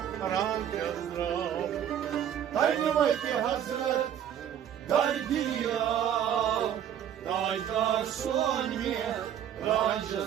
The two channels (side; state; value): left; quieter; 9.8 dB